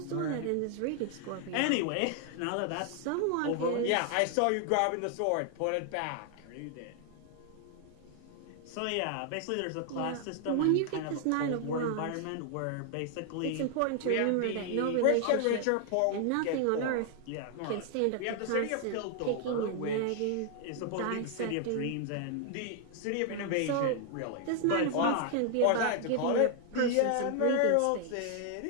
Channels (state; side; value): different; both; correlation 0.00